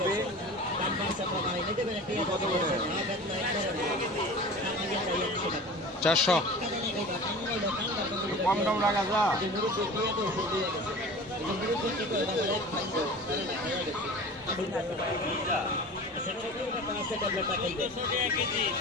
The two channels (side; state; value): both; normal; correlation 0.37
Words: কত করে? 400। কম দাম লাগা যা।